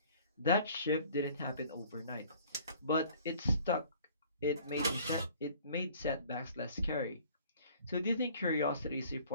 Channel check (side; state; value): both; inverted; correlation -0.52